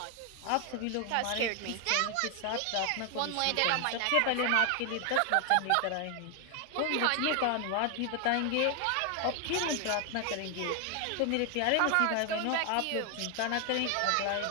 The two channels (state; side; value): different; both; correlation 0.00